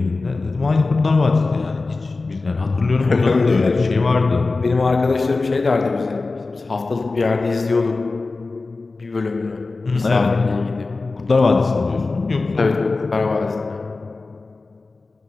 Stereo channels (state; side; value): quieter; right; 3.7 dB